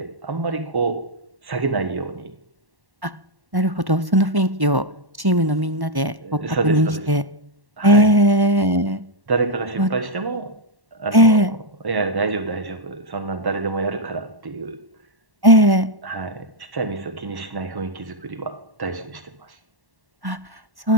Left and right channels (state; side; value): late; left; 1.1 ms